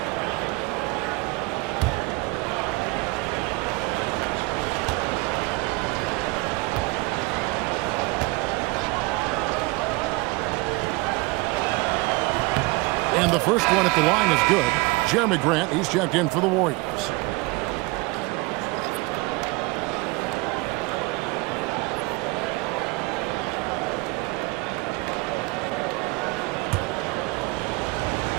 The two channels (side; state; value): left; quieter; 24.9 dB